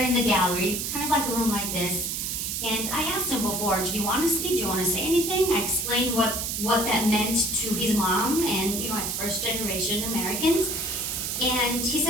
in the gallery, kind of like a room like this. And I asked him before, do you want to speak? Do you want to say anything? I explained what that meant to his mom and, as first generation Americans. And he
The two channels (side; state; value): right; noise; hiss, 2 dB below the sound